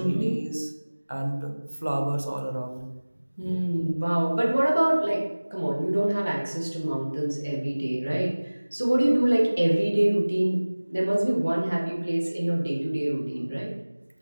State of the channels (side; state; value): both; inverted; correlation -1.00